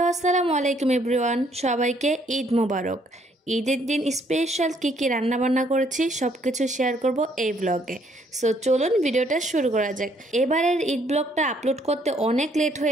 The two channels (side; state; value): both; normal; correlation 0.67